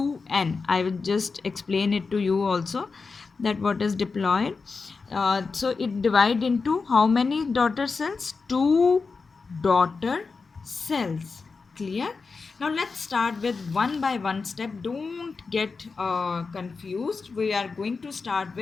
I will just explain it to you also, that what is diploid. So it divide into how many daughter cells? 2 daughter cells. Clear? Now let's start with one by one step. Don't get confused. We are going to start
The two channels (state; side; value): quieter; right; 4.5 dB